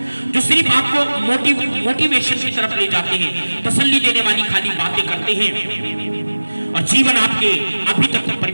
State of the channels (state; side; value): inverted; both; correlation -1.00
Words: जो सिर्फ आपको मोटिवेशन की तरफ ले जाते हैं, तसल्ली देने वाली खाली बातें करते हैं और जीवन आपके अभी तक